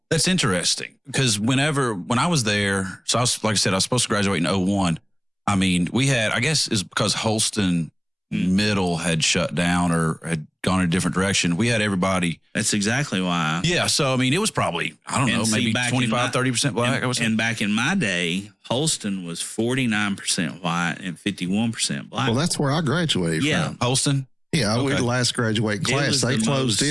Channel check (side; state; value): both; identical; correlation 1.00